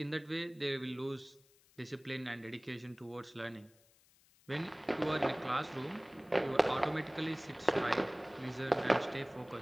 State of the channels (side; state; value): left; noise; hiss, 30 dB below the sound